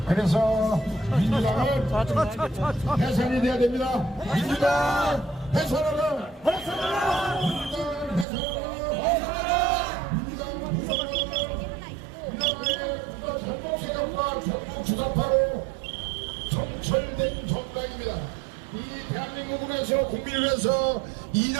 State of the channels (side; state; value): left; drops out; at 8.2 s